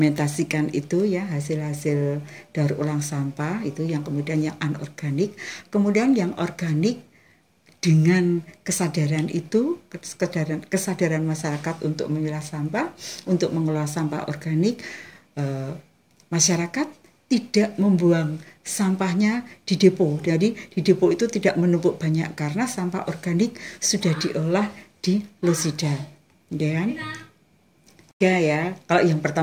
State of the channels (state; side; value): identical; both; correlation 1.00